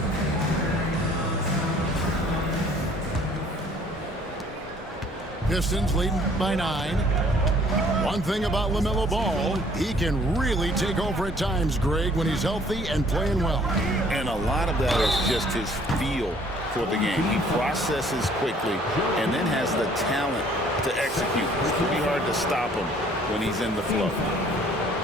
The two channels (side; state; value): both; normal; correlation 0.58